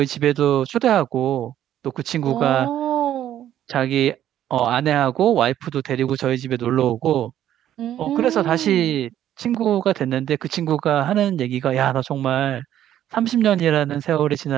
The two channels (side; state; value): left; quieter; 11.5 dB